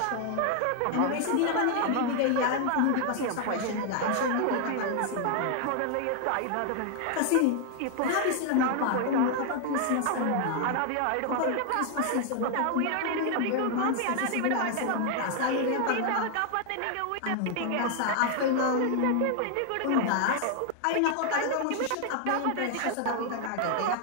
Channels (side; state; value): both; different; correlation 0.00